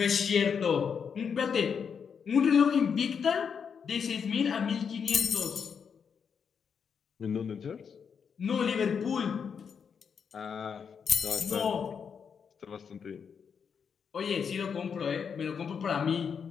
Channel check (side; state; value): right; quieter; 6.7 dB